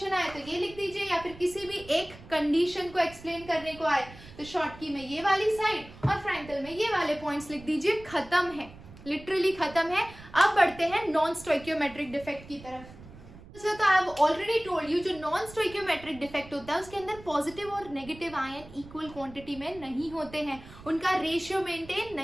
आए तो ये लिख दीजिए, या फिर किसी भी एक कंडीशन को एक्सप्लेन करने को आए तो शॉर्टकी में ये वाली साइड और फ्रैंकल में ये वाले पॉइंट्स लिख दीजिए। खत्म है, लिटरली खत्म है। अब बढ़ते हैं नॉन स्टोइकियोमेट्रिक डिफेक्ट की तरफ। तो I have already told you, जो नॉन स्टोइकियोमेट्रिक डिफेक्ट होता है उसके अंदर पॉजिटिव और नेगेटिव आयन इक्वल क्वांटिटी में नहीं होते हैं, उनका रेशियो मेंटेन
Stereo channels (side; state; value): right; noise; rumble, 18 dB below the sound